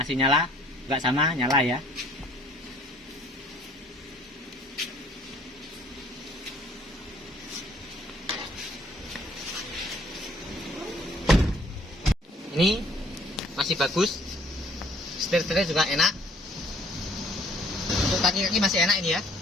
nyala, nggak sama nyala ya. Ini masih bagus, setir-setirnya juga enak. Untuk kaki-kaki masih enak ini ya.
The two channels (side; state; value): both; normal; correlation 0.59